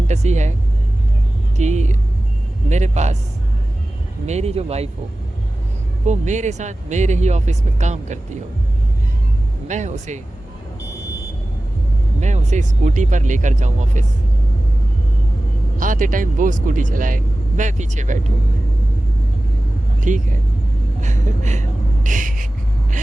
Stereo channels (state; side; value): normal; both; correlation 0.96